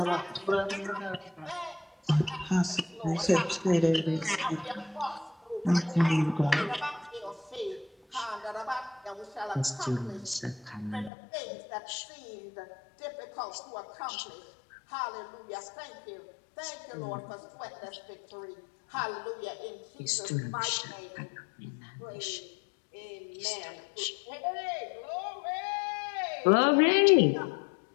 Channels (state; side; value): drops out; right; at 11.1 s